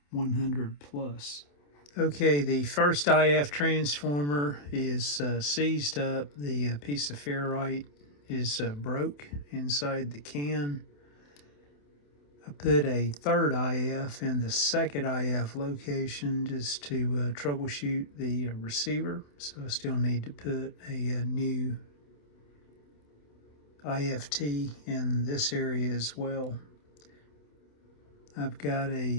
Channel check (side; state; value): right; late; 28 ms